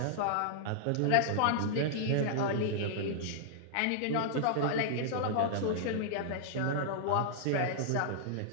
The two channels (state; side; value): different; both; correlation -0.01